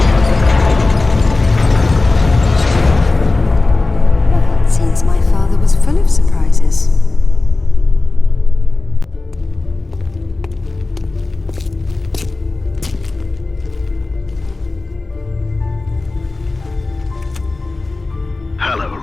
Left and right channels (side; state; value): right; quieter; 3.3 dB